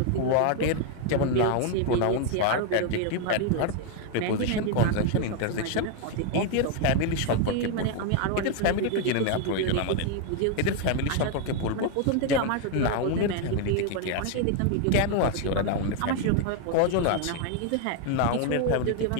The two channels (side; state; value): both; different; correlation 0.01